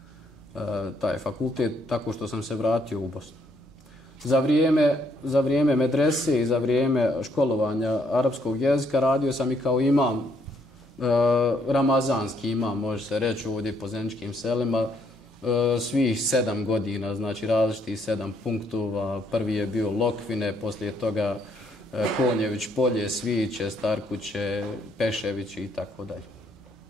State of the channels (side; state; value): both; normal; correlation 0.70